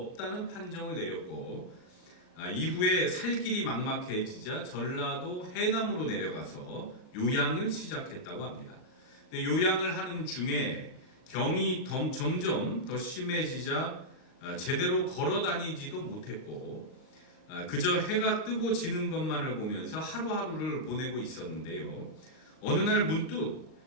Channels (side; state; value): right; late; 38 ms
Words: 판정을 내렸고, 이후에 살 길이 막막해지자 전라도 해남으로 내려가서 요양을 시작했다고 합니다. 요양을 하는 중에 병이 점점 더 심해지자 제대로 걸어 다니지도 못했고 그저 해가 뜨고 지는 것만을 보면서 하루하루를 보내고 있었는데요. 어느 날 문득